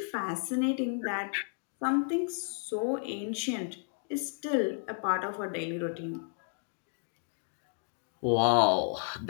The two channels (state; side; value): silent; right; 56 dB below the other